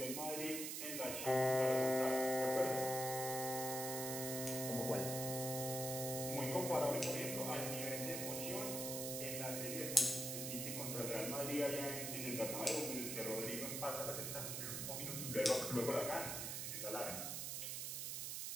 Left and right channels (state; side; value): noise; right; hiss, 3 dB below the sound